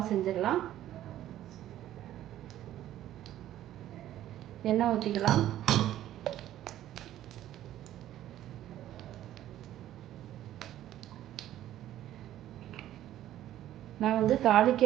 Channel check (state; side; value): quieter; left; 12.8 dB